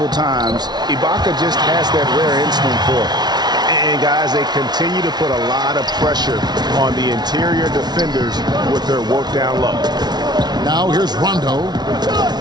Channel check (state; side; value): late; left; 0.20 ms